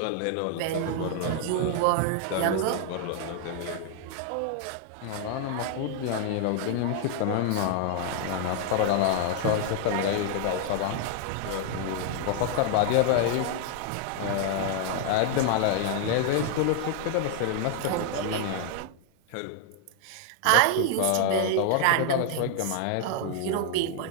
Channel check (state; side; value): different; both; correlation 0.00